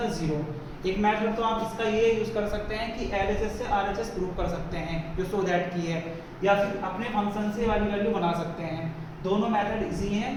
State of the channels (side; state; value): both; identical; correlation 1.00